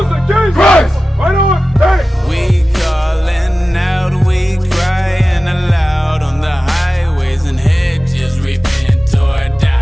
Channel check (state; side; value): normal; both; correlation 0.95